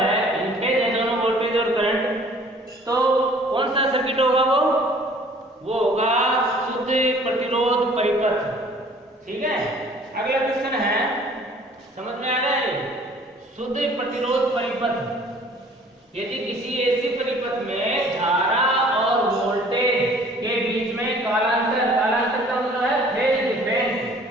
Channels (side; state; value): both; normal; correlation 0.53